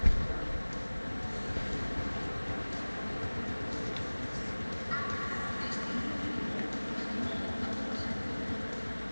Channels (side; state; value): both; inverted; correlation -1.00